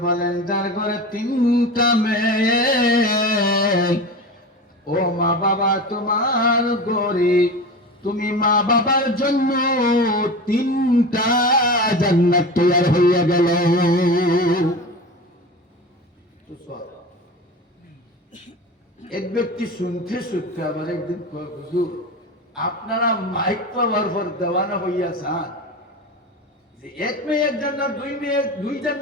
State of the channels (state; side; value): normal; both; correlation 0.29